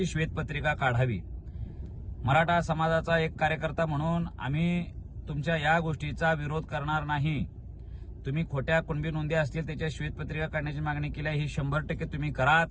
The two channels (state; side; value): identical; both; correlation 1.00